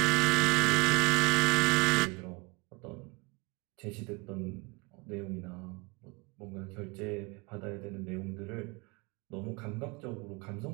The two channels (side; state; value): left; quieter; 26.6 dB